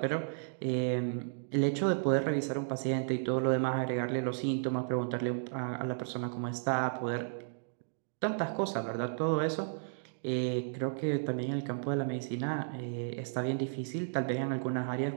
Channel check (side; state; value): left; silent; digital silence